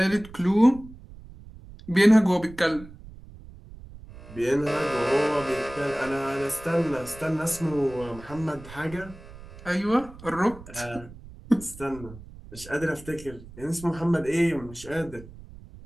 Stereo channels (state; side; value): noise; right; rumble, 17 dB below the sound